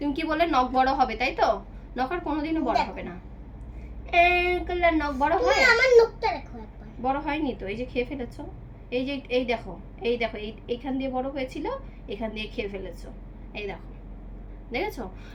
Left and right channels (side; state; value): both; identical; correlation 1.00